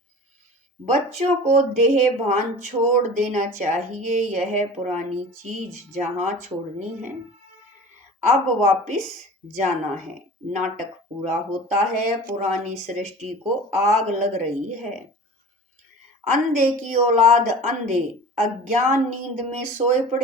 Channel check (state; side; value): normal; both; correlation 0.39